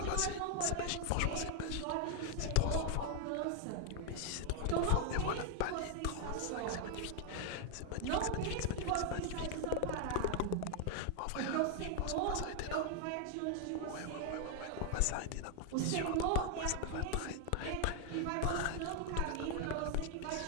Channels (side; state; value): both; different; correlation 0.00